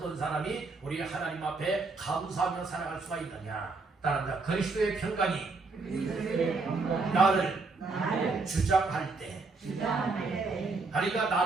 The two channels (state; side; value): quieter; left; 3.9 dB